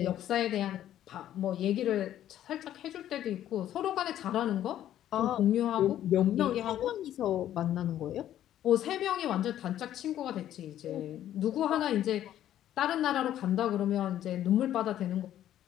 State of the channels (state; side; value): quieter; right; 11.8 dB